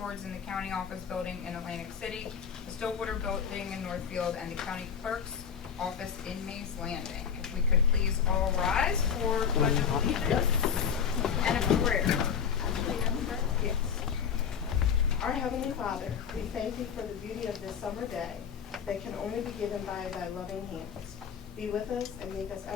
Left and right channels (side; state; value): right; quieter; 7.6 dB